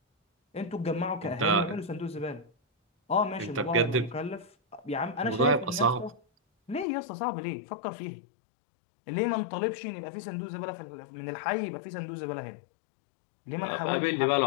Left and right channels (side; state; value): right; drops out; at 6.9 s